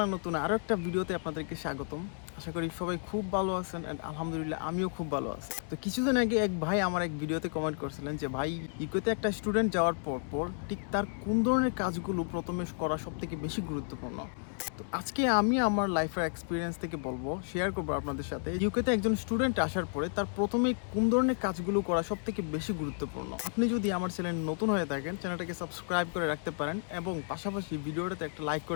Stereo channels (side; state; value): right; silent; 56 dB below the other